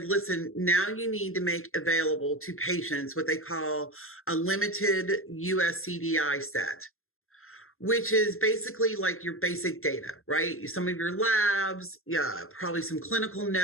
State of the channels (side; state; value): right; late; 0.61 ms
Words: listen, now you need to make available to patients what they call a limited US CDI set, which is basically like your basic data, right? Some of your labs, yeah, probably some clinical